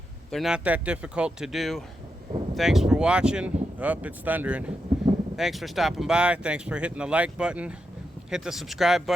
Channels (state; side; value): normal; both; correlation 0.85